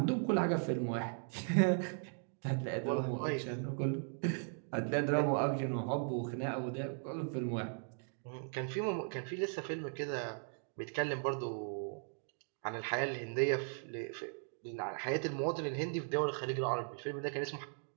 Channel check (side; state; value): left; silent; 53 dB below the other